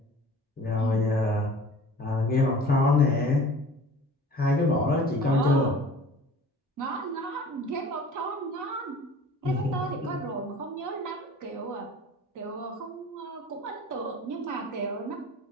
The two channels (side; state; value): both; normal; correlation 0.45